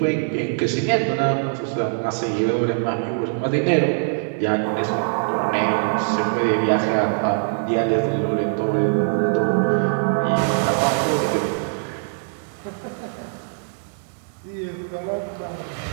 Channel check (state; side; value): silent; left; digital silence